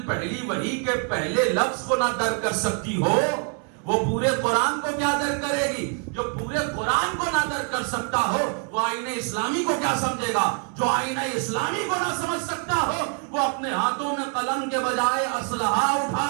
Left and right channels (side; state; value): left; quieter; 39.8 dB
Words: پہلی وحی کے پہلے لفظ کو نہ درک کر سکتی ہو وہ پورے قرآن کو کیا درک کرے گی؟ جو پورے قرآن کو نہ درک کر سکتا ہو وہ آئین اسلامی کو کیا سمجھے گا؟ جو آئین اسلامی کو نہ سمجھ سکتا ہو وہ اپنے ہاتھوں میں قلم کے بجائے اسلحہ اٹھا